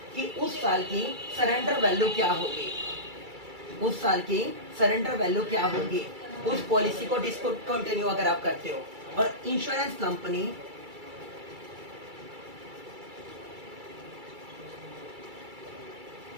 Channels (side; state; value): left; late; 2.3 ms